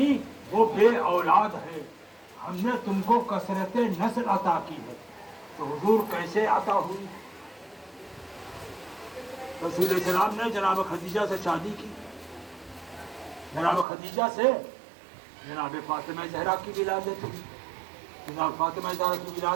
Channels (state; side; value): drops out; left; at 13.9 s